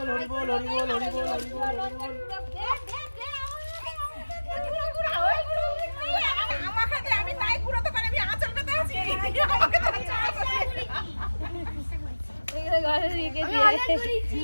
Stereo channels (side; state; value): both; inverted; correlation -1.00